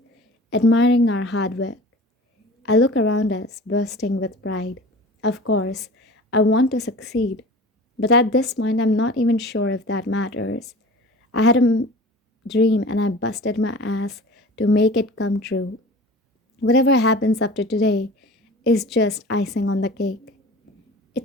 admiring our hard work. I look around us, bursting with pride. Of course, I want to succeed, but at this point, I'm not even sure if that matters. I had a dream and I busted my ass to make it come true. Whatever happens after today is just icing on the cake.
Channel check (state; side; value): normal; both; correlation 0.40